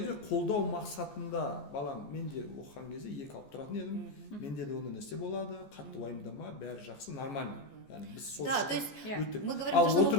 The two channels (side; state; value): right; late; 14 ms